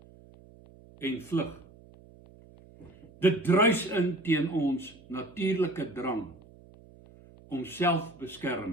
en vlug. Dit druis in teen ons natuurlike drang om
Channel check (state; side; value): noise; right; hum, 23 dB below the sound